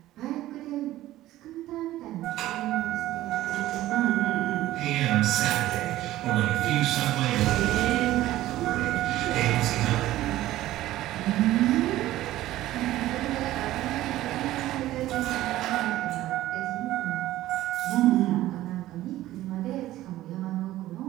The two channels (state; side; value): quieter; left; 15.2 dB